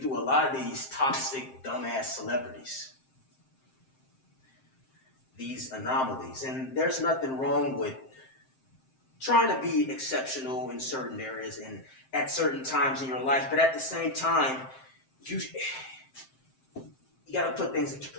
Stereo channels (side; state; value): right; late; 7.6 ms